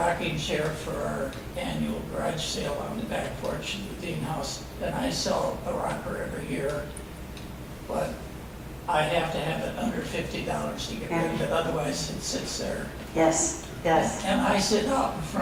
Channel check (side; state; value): both; identical; correlation 1.00